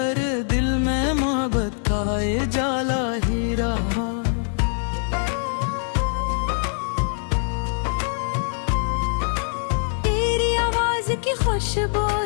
दिल में मोहब्बत का ये जाला ही रहा। तेरी आवाज की खुशबू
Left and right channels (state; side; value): silent; right; digital silence